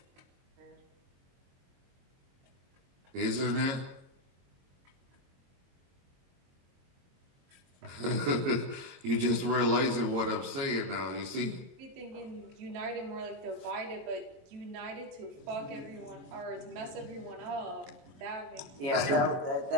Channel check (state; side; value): late; left; 22 ms